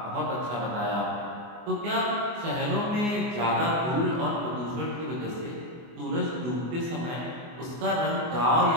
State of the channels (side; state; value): left; late; 24 ms